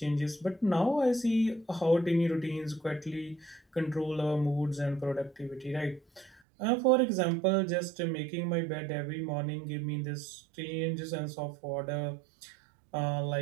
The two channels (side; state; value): left; drops out; at 6.4 s